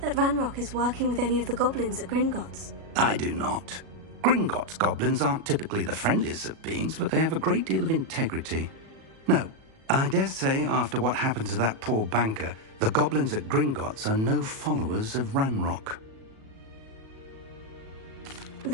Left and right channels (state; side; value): late; left; 37 ms